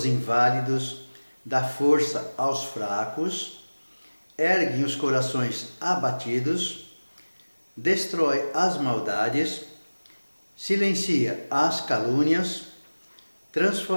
inválidos, dá força aos fracos, ergue os corações abatidos, destrói as maldades, silencia as calúnias,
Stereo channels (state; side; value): inverted; both; correlation -1.00